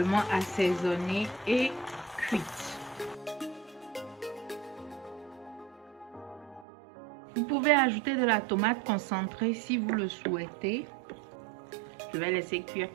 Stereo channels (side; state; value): left; drops out; at 6.7 s